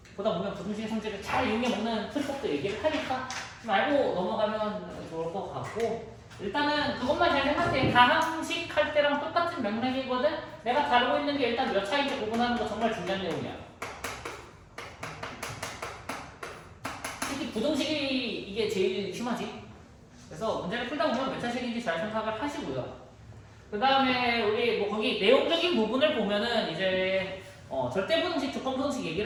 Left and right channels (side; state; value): both; identical; correlation 1.00